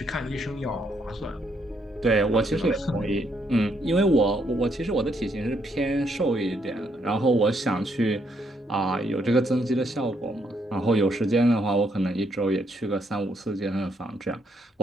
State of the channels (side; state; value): both; normal; correlation 0.74